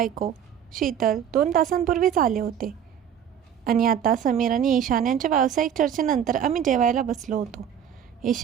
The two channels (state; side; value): quieter; left; 8.9 dB